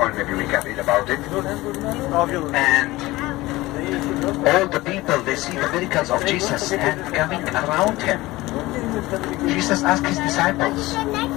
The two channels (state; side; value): quieter; right; 19.1 dB